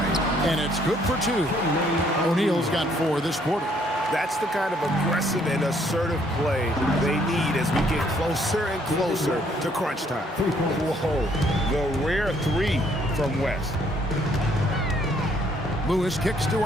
And it's good for 2. O'Neal's got 4 this quarter. That's the kind of aggressive and assertive play they need as we get closer and closer to crunch time. Whoa, the rare 3 from West. Lewis kicks to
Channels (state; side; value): normal; both; correlation 0.66